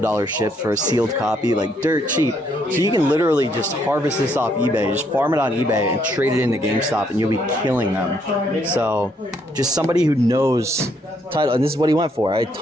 shipped for a sealed copy, like dirt cheap. So you can literally just harvest this off eBay, just farm it on eBay and trade it into GameStop, and you'll be killing them. So, just somebody who knows title, and this is what he went for. I had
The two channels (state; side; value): normal; both; correlation 0.71